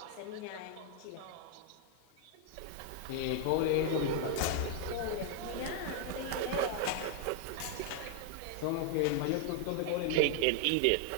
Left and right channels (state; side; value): different; both; correlation 0.00